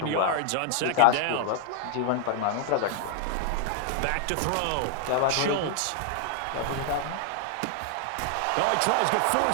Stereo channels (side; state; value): both; different; correlation 0.00